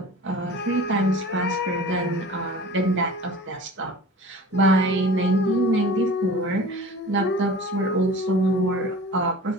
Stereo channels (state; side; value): normal; both; correlation 0.40